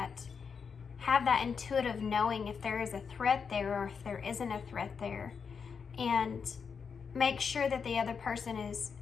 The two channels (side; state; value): right; quieter; 6.1 dB